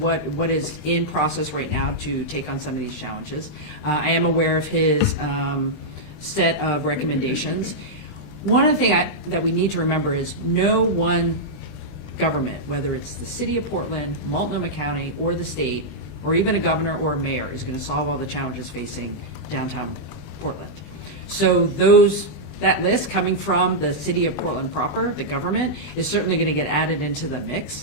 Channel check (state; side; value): late; right; 20 ms